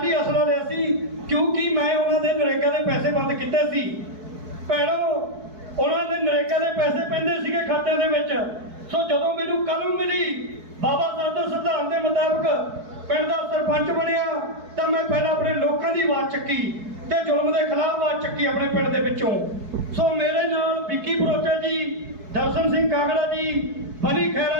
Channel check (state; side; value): late; left; 4.6 ms